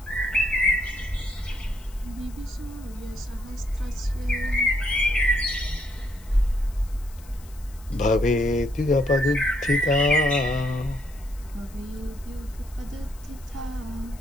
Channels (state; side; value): noise; left; hiss, 24 dB below the sound